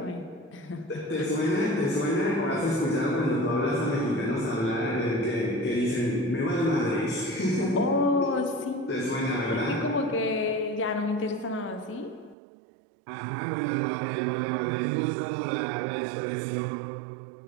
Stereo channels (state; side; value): drops out; left; at 12.4 s